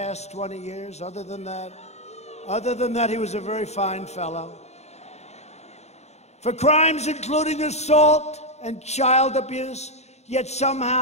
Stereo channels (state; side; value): late; right; 0.32 ms